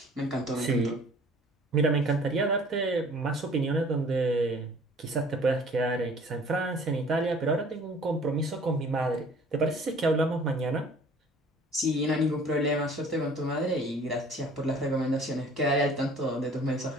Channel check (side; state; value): both; normal; correlation 0.51